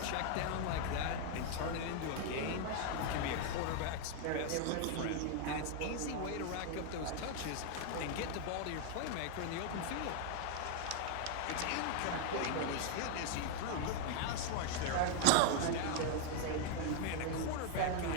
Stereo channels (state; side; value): different; both; correlation 0.01